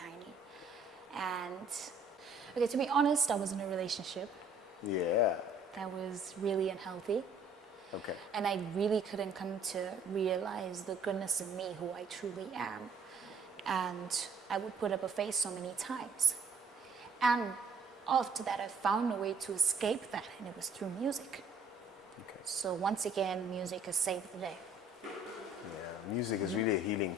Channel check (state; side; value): quieter; left; 3.4 dB